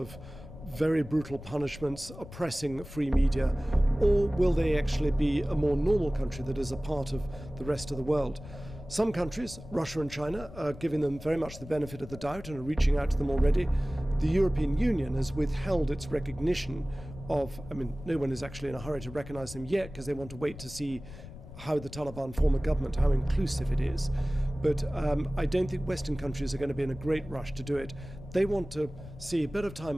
very brutal punishments, oppressing free media, or will they actually be a more normal country that is a part of the rest of the world? Some countries, Russia and China, are giving them very much the benefit of the doubt and are reaching out to them already. The European Union has withheld its recognition of, no one is actually in a hurry to recognize them yet because they want to wait to see how the Taliban form a government, how inclusive it is. But I don't think Western countries are going to be in a great rush to do it. They want to see a bit of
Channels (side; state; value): left; noise; rumble, 15 dB below the sound